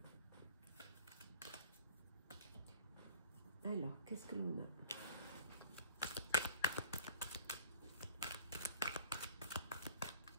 Alors, qu'est-ce que l'on a?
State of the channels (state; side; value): inverted; both; correlation -0.48